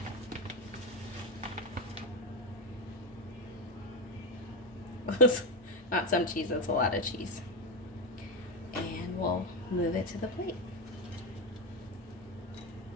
there. Not some cheese, that's a lot of cheese. And we'll move it to the plate.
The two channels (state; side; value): normal; both; correlation 0.13